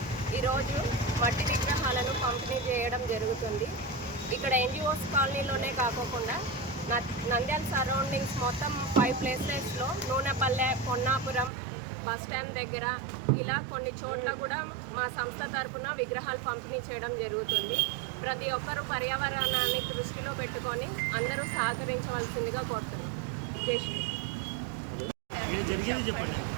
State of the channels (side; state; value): left; drops out; at 11.5 s